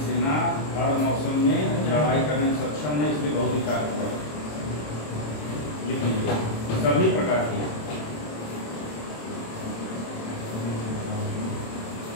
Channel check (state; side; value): late; right; 27 ms